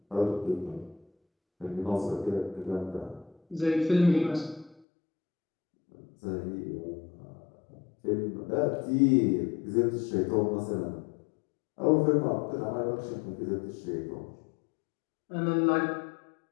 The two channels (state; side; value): drops out; right; at 4.8 s